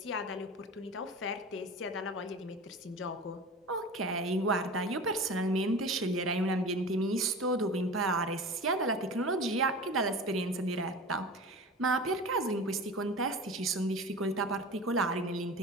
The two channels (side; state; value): both; normal; correlation 0.34